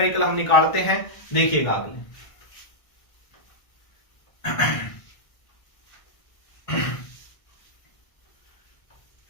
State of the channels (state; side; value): late; right; 1.6 ms